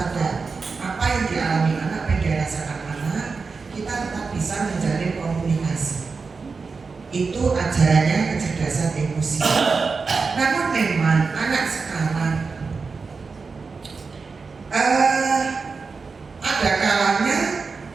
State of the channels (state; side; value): quieter; left; 4.7 dB